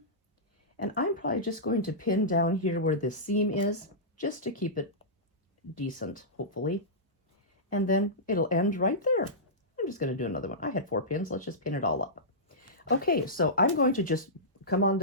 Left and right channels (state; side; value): normal; both; correlation -0.16